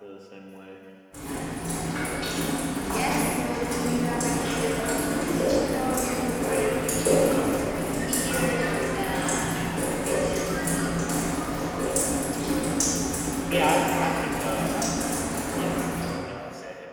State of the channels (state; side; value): identical; both; correlation 1.00